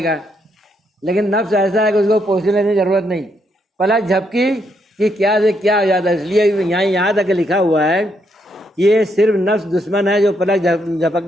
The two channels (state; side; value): normal; both; correlation 0.76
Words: گا, لیکن نفس ایسا ہے کہ اس کو پوزیشن لینے کی ضرورت نہیں. پلک جھپکی کہ کیا سے کیا ہو جاتا ہے. اس لیے یہاں تک لکھا ہوا ہے یہ صرف نفس دشمن ہے جو پلک